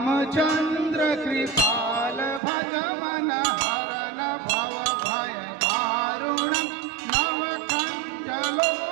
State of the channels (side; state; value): left; drops out; at 2.4 s